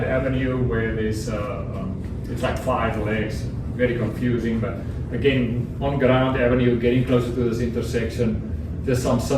Avenue where there's it's like 5 legs, very confusing, but again, on Grand Avenue, getting closer to this intersection, just some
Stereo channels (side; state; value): both; identical; correlation 1.00